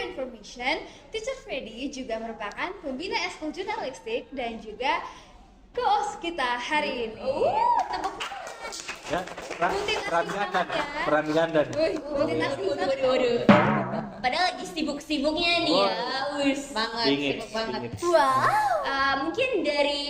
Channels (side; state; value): both; identical; correlation 1.00